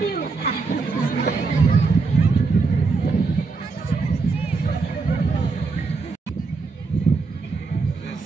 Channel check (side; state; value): left; quieter; 4.3 dB